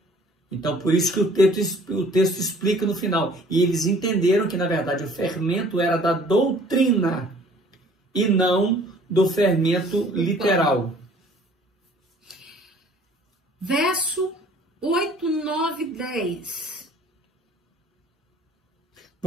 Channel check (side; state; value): both; normal; correlation 0.53